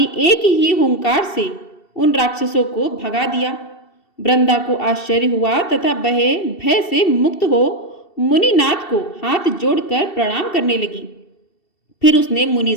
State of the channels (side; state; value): right; late; 2.7 ms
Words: एक ही हुंकार से उन राक्षसों को भगा दिया। वृंदा को आश्चर्य हुआ तथा वह भय से मुक्त हो मुनिनाथ को हाथ जोड़कर प्रणाम करने लगी। फिर उसने मुनि